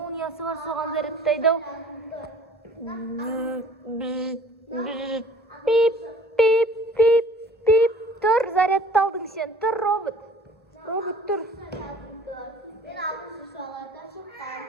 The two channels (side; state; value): both; normal; correlation 0.50